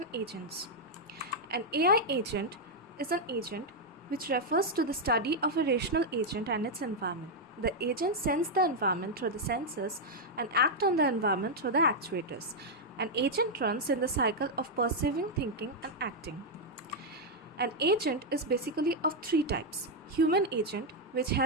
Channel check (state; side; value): normal; both; correlation -0.01